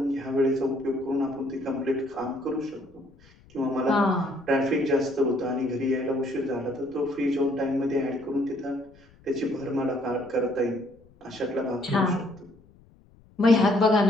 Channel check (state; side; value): noise; left; rumble, 28 dB below the sound